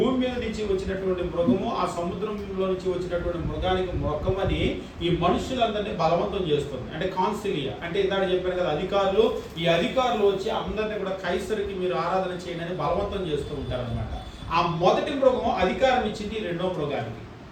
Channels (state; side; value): identical; both; correlation 1.00